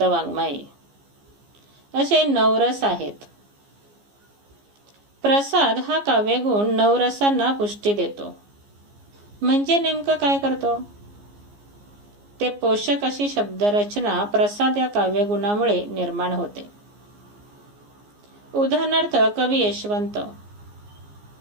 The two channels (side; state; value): left; late; 15 ms